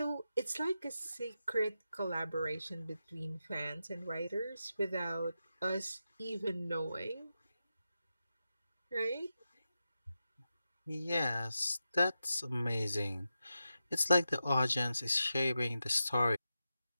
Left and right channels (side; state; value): both; inverted; correlation -0.90